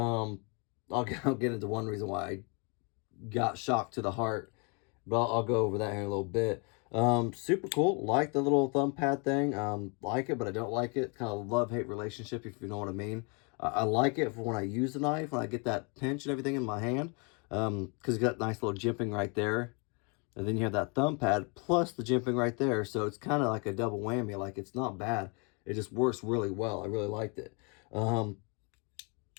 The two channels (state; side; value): quieter; right; 33.7 dB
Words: I'll get into one reason why I got shocked to the heart, but I'll go over that here in a little bit. Super cool. Like the little thumb pad thing. Like it, but I don't like it. Kind of love-hate relationship, if you know what I mean. I like it for when I use the knife, when I get that pinch and everything in my hand. Because you got nice little jimping right there. And then you have that thumb pad plus the jimping right there. So it's kind of like a double whammy. Like, it's not bad. It just works really well. I really liked it. But